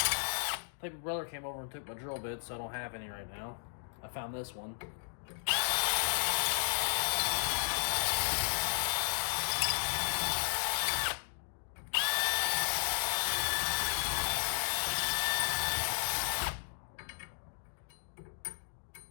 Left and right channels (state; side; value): silent; right; digital silence